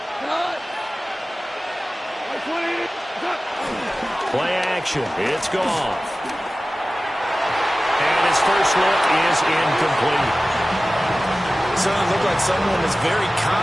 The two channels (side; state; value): both; normal; correlation 0.96